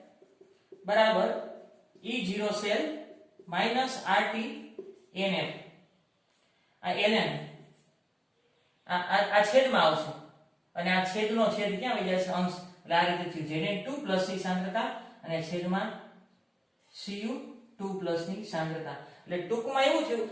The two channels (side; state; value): both; identical; correlation 1.00